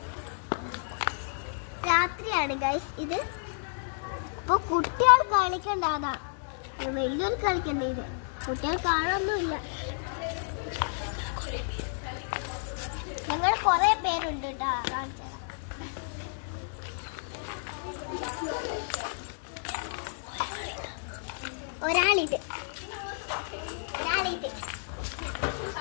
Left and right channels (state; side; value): silent; right; digital silence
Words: രാത്രിയാണ് ഗൈസ് ഇത്. അപ്പൊ കുട്ടികൾ കളിക്കണ്ടാതാ, വലിയൊരു കളിക്കണ്ട. ഇത് കുട്ടികൾ കാണാനൊന്നുമില്ല. ഞങ്ങൾ കൊറേ പേരുണ്ട് കേട്ടോ. കാണിച്ചു ഒരാളിത്